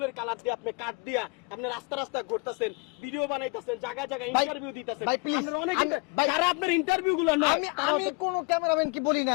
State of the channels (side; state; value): right; quieter; 30.8 dB